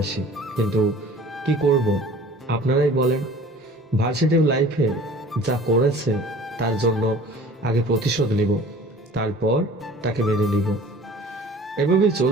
কিন্তু কি করব আপনারাই বলেন। ভার্সিটি লাইফে যা করেছে তার জন্য আগে প্রতিশোধ নিব, তারপর তাকে মেনে নিব। এভাবেই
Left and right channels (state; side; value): normal; both; correlation 0.46